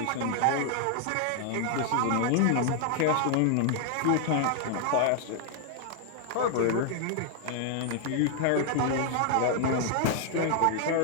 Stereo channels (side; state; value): both; different; correlation 0.00